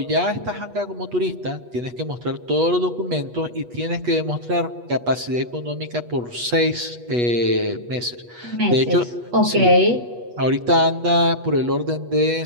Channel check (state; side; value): late; left; 8.2 ms